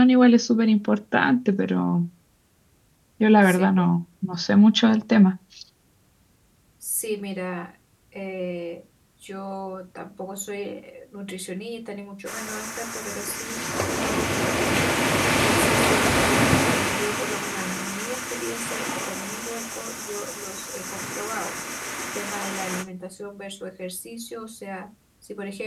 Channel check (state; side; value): identical; both; correlation 1.00